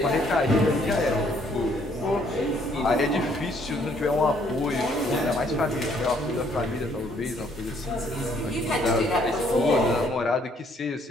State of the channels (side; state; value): both; normal; correlation 0.65